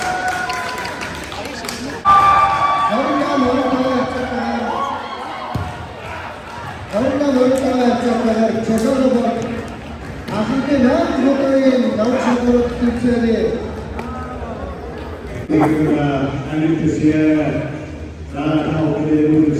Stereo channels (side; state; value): both; identical; correlation 1.00